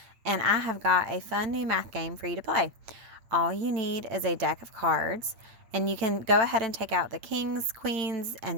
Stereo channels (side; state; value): left; late; 8.8 ms